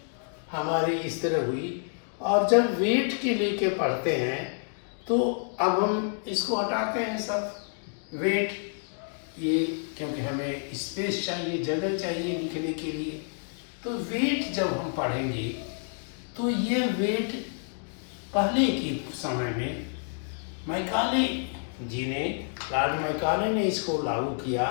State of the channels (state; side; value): silent; right; 58 dB below the other